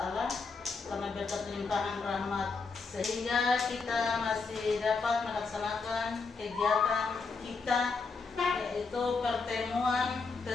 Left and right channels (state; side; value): quieter; right; 4.5 dB